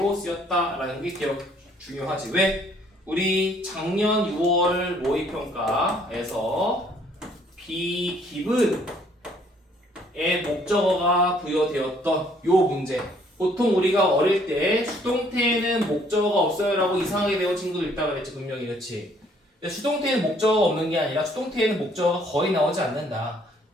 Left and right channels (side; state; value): both; normal; correlation 0.63